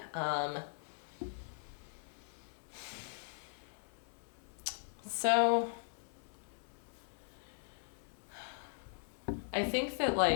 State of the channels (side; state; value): right; silent; 51 dB below the other